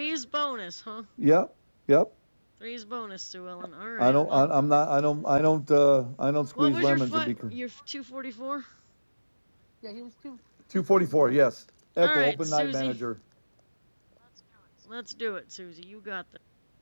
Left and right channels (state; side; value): inverted; both; correlation -1.00